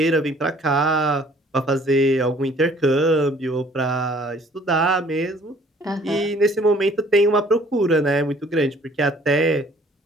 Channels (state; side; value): normal; both; correlation 0.56